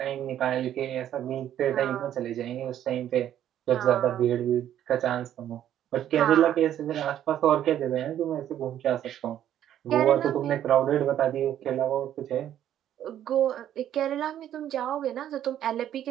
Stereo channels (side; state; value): left; quieter; 11.0 dB